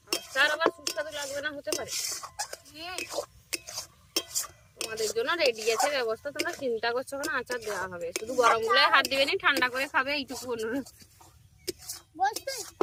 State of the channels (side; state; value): both; identical; correlation 1.00